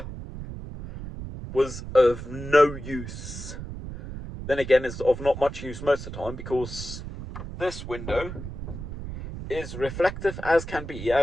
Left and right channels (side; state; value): right; noise; rumble, 9 dB below the sound